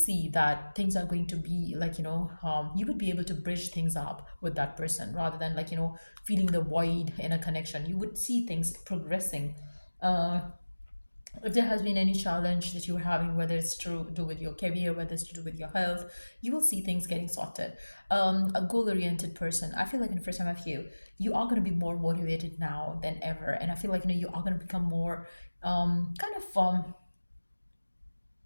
that things are going to be like you would be able to bridge things up with that person rather than like feeling the void in a connection. You would see things progressing. If there has been any challenge that you're having, whether it's to do with your career, whether it's to do with your health, you will see things getting sorted. A goal-oriented person, I feel like for some of you, you are going to be more motivated now than ever, and I feel like you are going to become more kind of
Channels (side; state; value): both; inverted; correlation -1.00